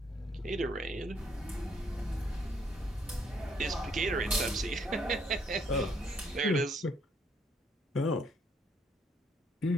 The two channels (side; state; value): both; normal; correlation 0.69